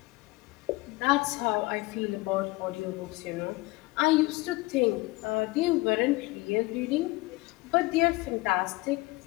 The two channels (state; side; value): quieter; right; 22.3 dB